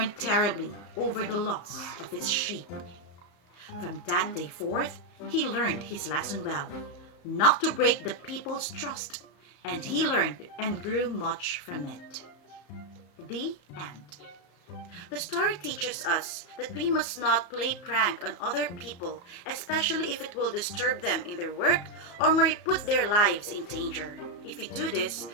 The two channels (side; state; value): right; late; 34 ms